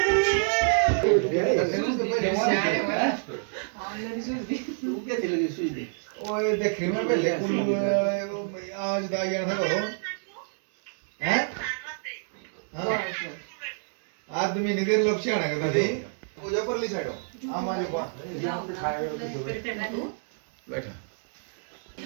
ओए देखने में पहले आज दागिया था करो हैं हाँ आदमी निधर लक्ष्य आना करता थी पूजा पर ली साइडो हमारे को बैठा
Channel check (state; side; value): silent; left; digital silence